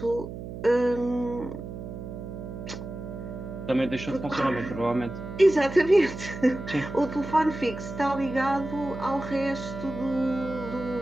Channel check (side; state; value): right; noise; hum, 9 dB below the sound